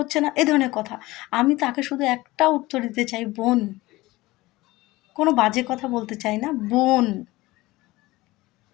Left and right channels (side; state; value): right; quieter; 19.6 dB